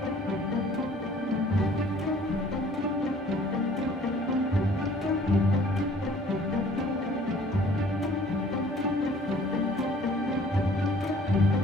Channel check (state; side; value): normal; both; correlation 0.54